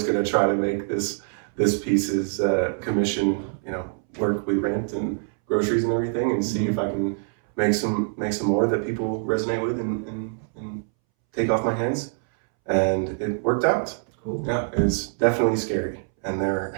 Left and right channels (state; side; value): silent; left; 62 dB below the other